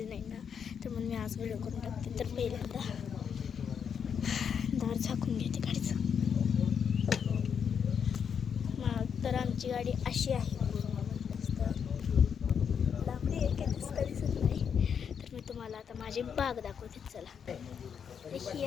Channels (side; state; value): right; quieter; 7.3 dB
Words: नाही ना, तर म्हणून मी आज व्हिडिओ करून टाकते. तर पहिल्यांदा दार झाकून घेते गाडीचं. तर आमची गाडी अशी आहे, लांबडी आहे, काही दिसत नाही. तर मी तुम्हाला आता माझी बाग दाखवते. चला, ही